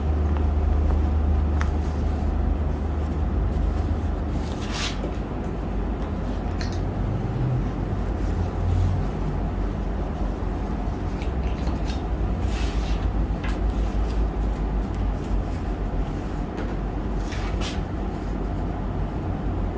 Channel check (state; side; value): identical; both; correlation 1.00